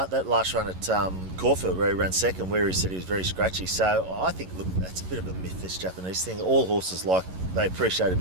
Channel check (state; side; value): late; left; 11 ms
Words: last run at Caulfield, where he ran second, where he said he was very scratchy. So I think, look, that's a bit of a myth, this Japanese thing. All horses they appreciate a